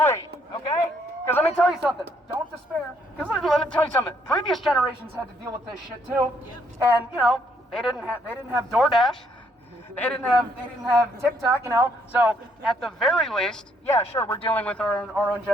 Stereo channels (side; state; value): both; normal; correlation 0.69